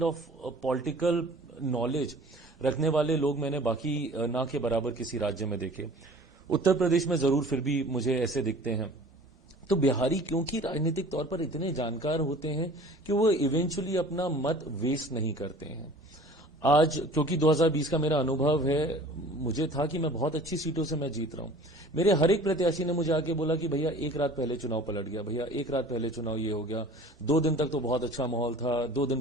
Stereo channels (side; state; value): both; normal; correlation 0.46